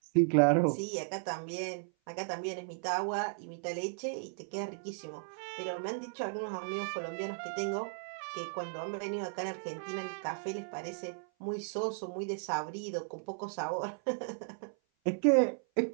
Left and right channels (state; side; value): silent; left; 54 dB below the other